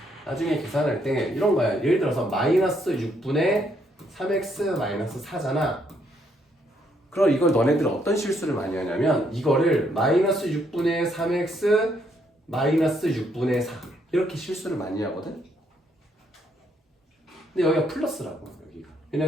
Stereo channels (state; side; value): normal; both; correlation 0.72